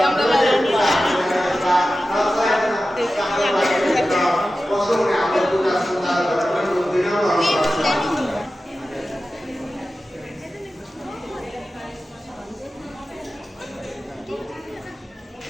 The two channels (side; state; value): both; normal; correlation 0.94